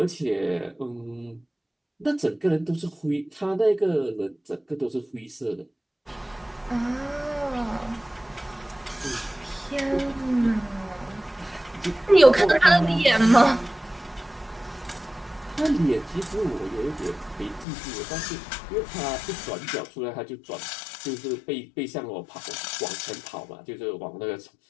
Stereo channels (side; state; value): right; drops out; at 17.7 s